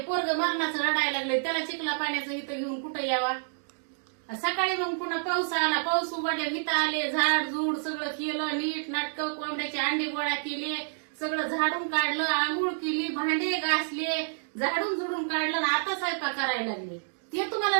पोरग मरणाचं रडायला लागले, त्याला चिखला पाण्याचं इथं घेऊन कुठं यावा. सकाळी मग पुन्हा पाऊस आला, पाऊस उघडल्या इथं आले, झाड झूड सगळं केलं, नीट नाटक, कोंबड्याचे अंडे गोळा केले, सगळं झाडून काढलं, आंघोळ केली, भांडे घासले, झाडून झुडून काढलं, आता स्वयंपाक करायला लागले. ते तुम्हाला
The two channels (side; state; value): left; silent; digital silence